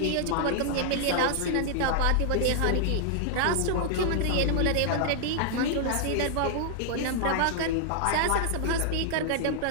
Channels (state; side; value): different; both; correlation 0.00